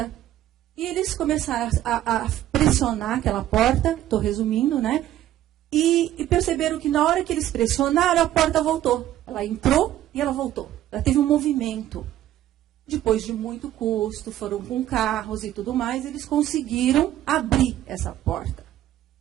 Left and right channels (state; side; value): quieter; left; 12.9 dB